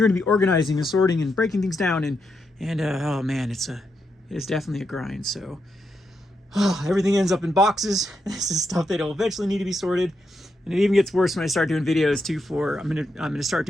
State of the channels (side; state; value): both; normal; correlation 0.83